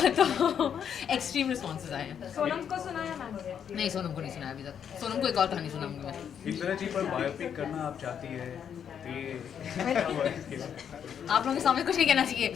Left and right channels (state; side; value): quieter; right; 8.2 dB